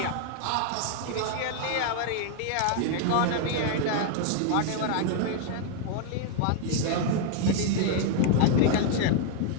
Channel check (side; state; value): both; different; correlation 0.00